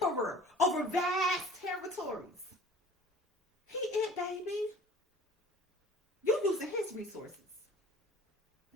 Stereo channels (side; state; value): both; normal; correlation 0.47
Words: over vast territories. He it, baby. You using his resources.